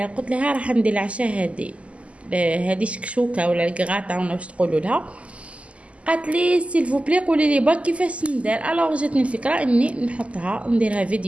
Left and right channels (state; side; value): late; left; 0.061 ms